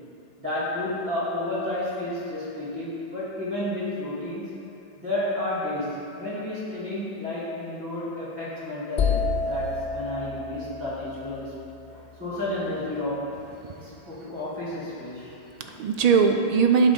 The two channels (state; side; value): late; left; 1.8 ms